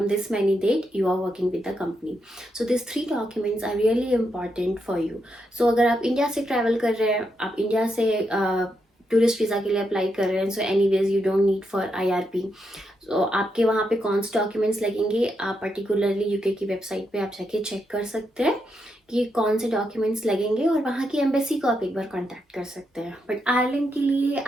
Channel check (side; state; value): both; normal; correlation 0.82